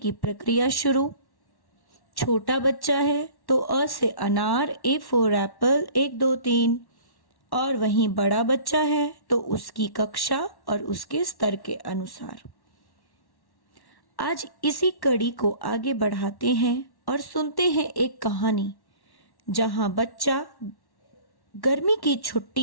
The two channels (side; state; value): right; late; 1.1 ms